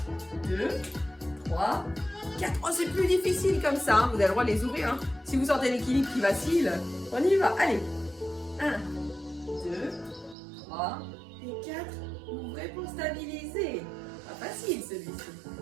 2, 3, 4. Oh, c'est plus difficile comme ça. Hein. Vous avez le droit de les ouvrir. Hein. Si vous sentez l'équilibre qui vacille, on y va. Allez. 1, 2, 3 et 4. Ouvrez pour stabiliser. Pas facile celui-ci.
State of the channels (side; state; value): left; drops out; at 10.4 s